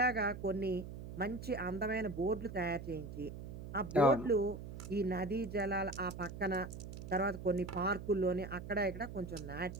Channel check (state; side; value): noise; right; hum, 10 dB below the sound